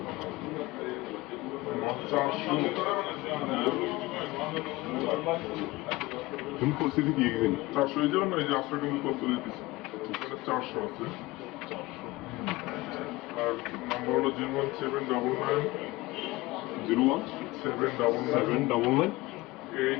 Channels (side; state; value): right; quieter; 20.5 dB